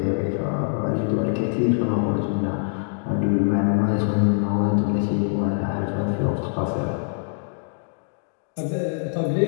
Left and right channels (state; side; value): silent; right; digital silence